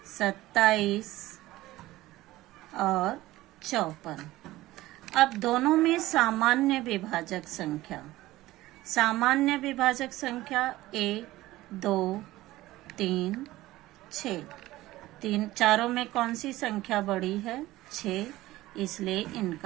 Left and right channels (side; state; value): left; quieter; 17.1 dB